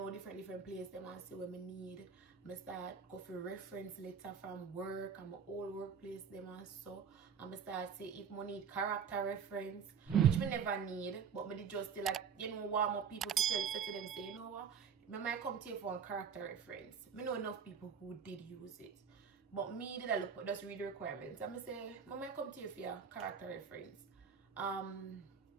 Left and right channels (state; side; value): quieter; left; 6.8 dB